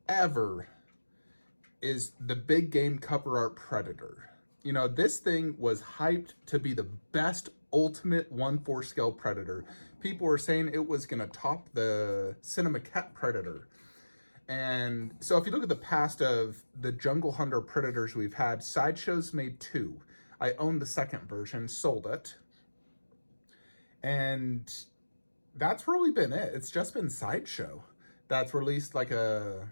ever is the big game cover art Predator. You know, this thing was hyped to be the best ultimate 1/4 scale Predator. People were saying it was going to top the Cinema Cat Predator. And so if you look at the past of the Jungle Hunter Predators we've had, Sideshow's made two. I owned the second version, sold it. And that's really been it. It's just been Sideshow that's released like a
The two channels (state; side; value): inverted; both; correlation -1.00